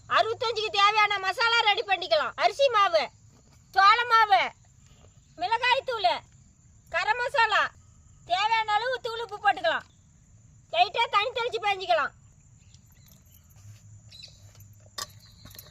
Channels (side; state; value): both; identical; correlation 1.00